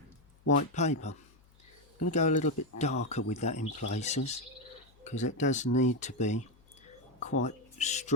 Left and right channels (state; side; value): noise; left; hum, 29 dB below the sound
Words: white paper. I'm going to go a little bit darker with that in places, because it does need to be quite